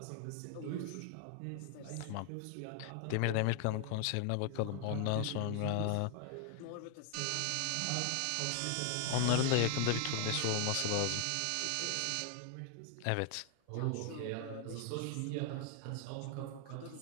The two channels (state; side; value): different; both; correlation 0.00